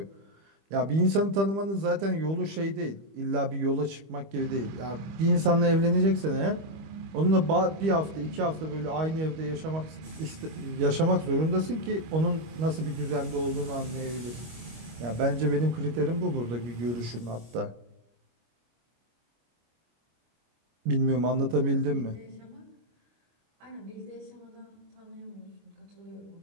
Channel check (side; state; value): left; late; 25 ms